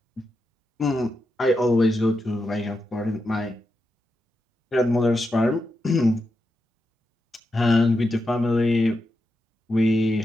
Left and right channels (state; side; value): normal; both; correlation 0.87